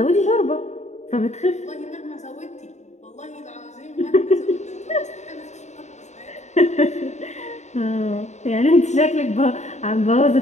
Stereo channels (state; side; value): late; right; 0.34 ms